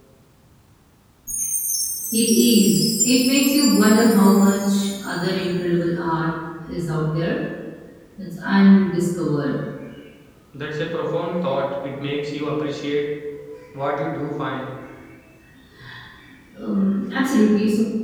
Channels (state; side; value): identical; both; correlation 1.00